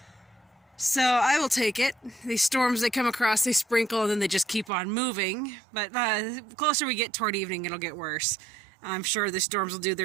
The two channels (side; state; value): left; drops out; at 4.7 s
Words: So I will take it. These storms, they come across, they sprinkle, and then they just keep on moving. But the closer we get toward evening, it'll get worse. I'm sure the storms will do